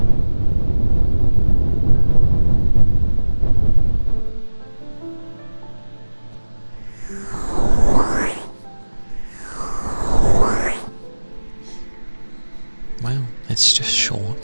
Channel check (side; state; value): both; inverted; correlation -1.00